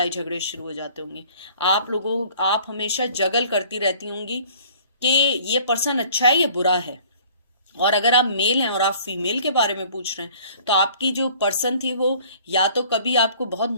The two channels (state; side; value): inverted; both; correlation -0.53